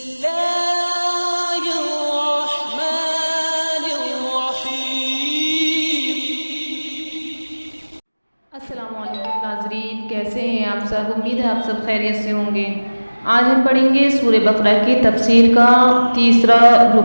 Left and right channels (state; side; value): inverted; both; correlation -1.00